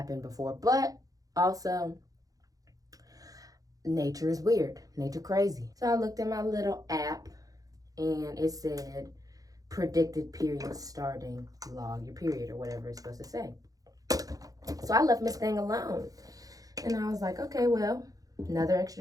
before. But also, nature is weird. Nature crazy. So I looked at my little app and it said predicted period starting, log your period, or whatever it's supposed to say. So I left Miss Thing alone. And I was like, okay, well, another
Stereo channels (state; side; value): late; left; 0.17 ms